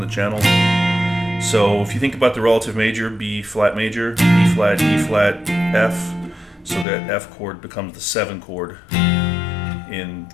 the channel. So if you think about the relative major, B flat major, E flat, E flat, F, so that F chord becomes the 7 chord in the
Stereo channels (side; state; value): right; drops out; at 6.9 s